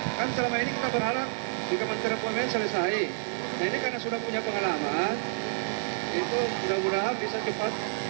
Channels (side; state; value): left; silent; digital silence